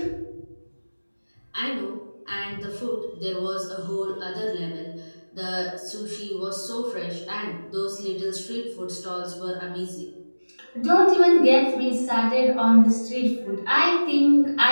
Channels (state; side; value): inverted; both; correlation -1.00